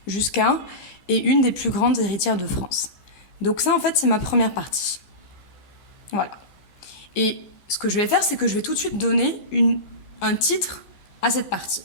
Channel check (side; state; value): right; late; 15 ms